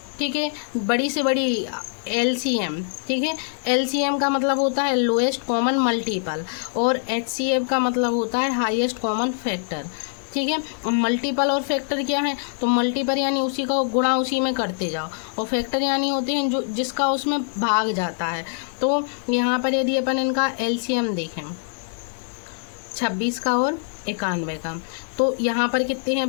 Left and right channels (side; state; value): right; silent; digital silence